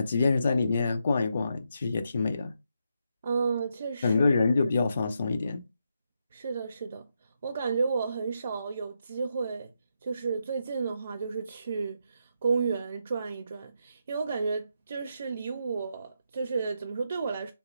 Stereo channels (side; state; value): both; inverted; correlation -0.82